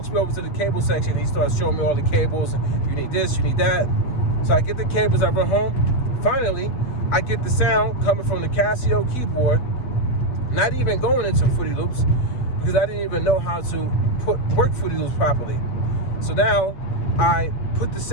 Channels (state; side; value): late; right; 8.0 ms